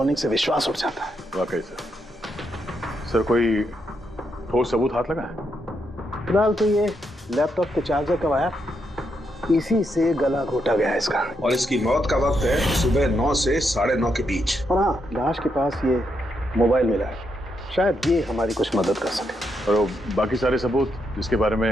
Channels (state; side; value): normal; both; correlation 0.80